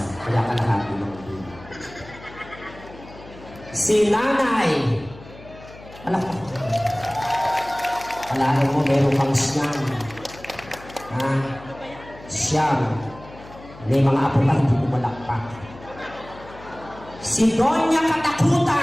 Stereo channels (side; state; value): left; noise; hum, 19 dB below the sound